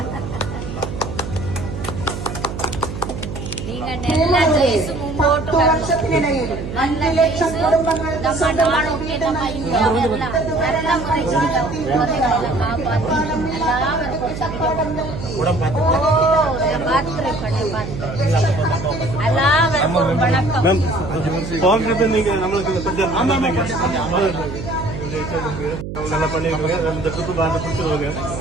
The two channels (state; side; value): noise; right; hum, 8 dB below the sound